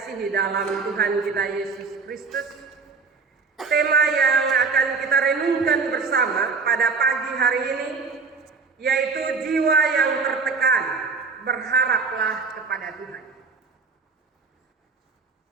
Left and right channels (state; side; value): quieter; left; 4.8 dB